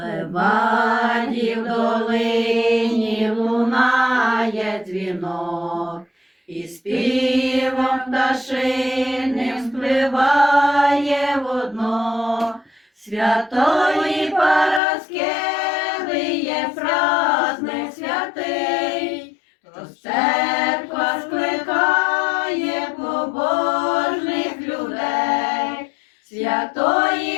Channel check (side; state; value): right; drops out; at 14.8 s